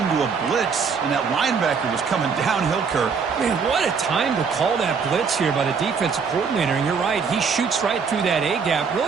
a blitz, and that linebacker was coming downhill, Kirk. Man, what a time to call that blitz here by the defensive coordinator. And you're right, he shoots right through that A-gap.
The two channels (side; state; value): left; quieter; 5.8 dB